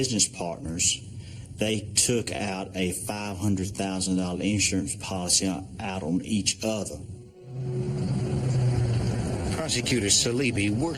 partners, they took out a $500,000 insurance policy out on each other. Prosecutor Salibi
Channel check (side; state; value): both; identical; correlation 1.00